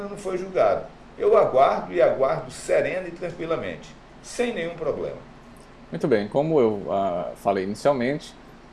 não foi julgado. Eu aguardo e aguardo serena e tranquilamente, sem nenhum problema. Muito bem, como eu falei inicialmente,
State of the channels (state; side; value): identical; both; correlation 1.00